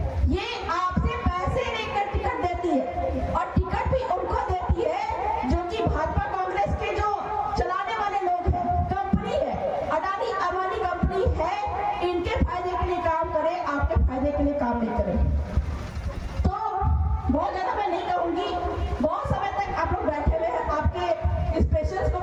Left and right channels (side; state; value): both; identical; correlation 1.00